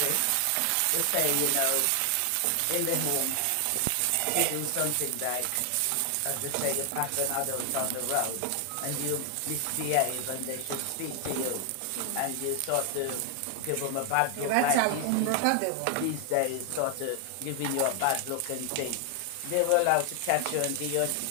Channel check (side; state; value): both; different; correlation 0.00